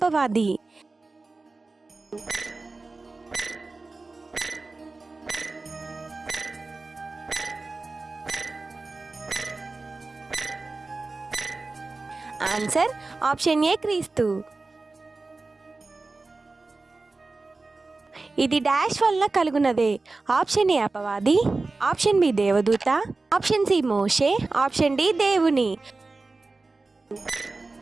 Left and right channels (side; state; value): left; quieter; 3.6 dB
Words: ఆన్సర్ ఆప్షన్ ఏ క్రీస్తు. ఇది డాష్ వల్ల కలుగునదే. ఆప్షన్ ఏ అపవాది, ఆప్షన్ బి దేవదూత, ఆప్షన్ సి మోషే, ఆప్షన్ డి దేవుని.